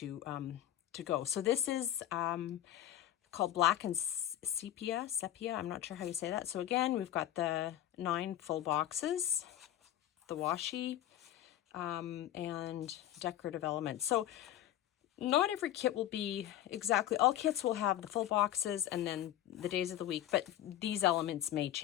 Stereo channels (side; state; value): right; quieter; 12.3 dB